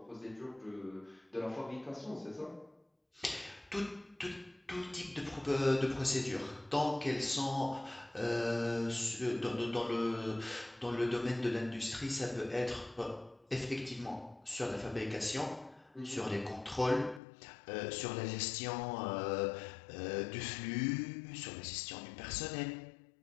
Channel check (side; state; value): right; drops out; at 17.2 s